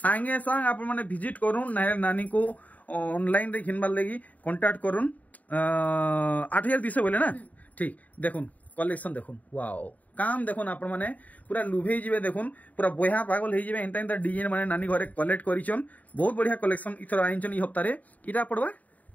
संग आपन माने विजिट करूं नानी को ऑनलाइन रे घिनबार लगी कांटेक्ट करूं 8200 बोले ना ठीक देखुन कलेक्शन देखुन वाओ काम देखुन आपण माने पूरा लुभे जिवे देखुन पूरा बया पागल हे जिवे एंता एंता डिजाइन माने नानी घरे कलेक्ट करिचन बहुत बढ़िया कलेक्शन इथर आइचन ई हफ्ता रे इटा पड़वा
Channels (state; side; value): late; right; 0.073 ms